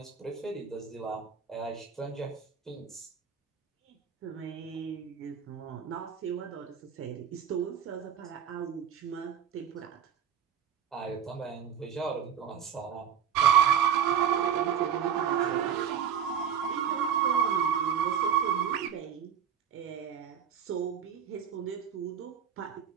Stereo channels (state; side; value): quieter; left; 8.3 dB